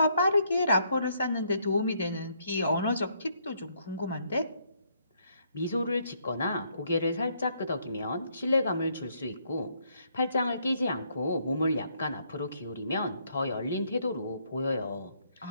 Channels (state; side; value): inverted; both; correlation -0.71